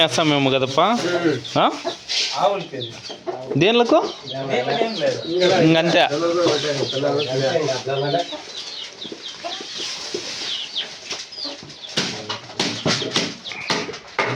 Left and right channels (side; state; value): both; identical; correlation 1.00